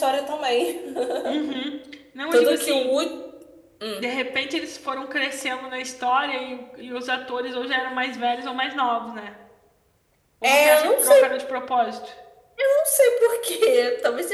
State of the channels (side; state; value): both; identical; correlation 1.00